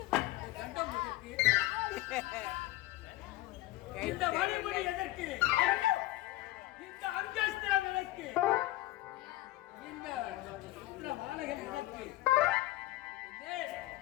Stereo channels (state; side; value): quieter; right; 17.1 dB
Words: கண்டம் எதற்கு? இந்த வழிமுறை எதற்கு? இந்த அங்கஸ்திரம் எதற்கு? இந்த மாலைகள் எதற்கு?